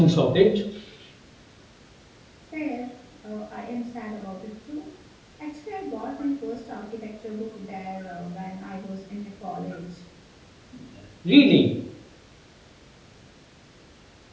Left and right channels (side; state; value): both; identical; correlation 1.00